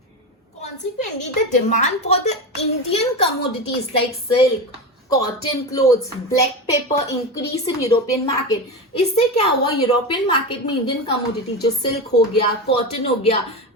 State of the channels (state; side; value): normal; both; correlation 0.21